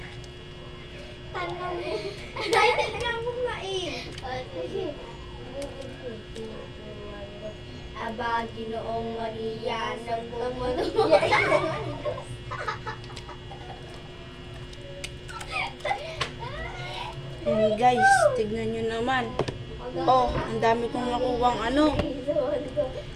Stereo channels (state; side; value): identical; both; correlation 1.00